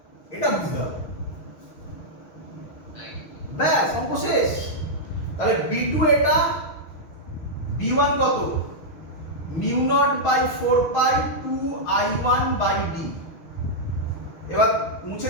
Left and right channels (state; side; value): late; right; 6.3 ms